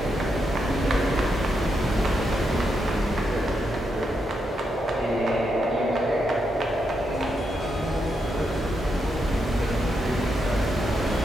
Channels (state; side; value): normal; both; correlation 0.82